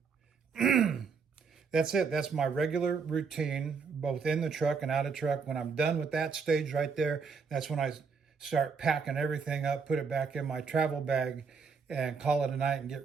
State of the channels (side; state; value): left; quieter; 5.4 dB